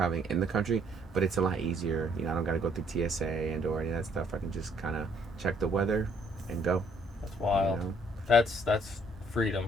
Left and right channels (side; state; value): both; normal; correlation 0.64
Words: in the country, but it's a lot easier. I don't got to go through TSA and or any of that stuff. I can just kind of check the weather and go. That's wild. You know? That's freedom,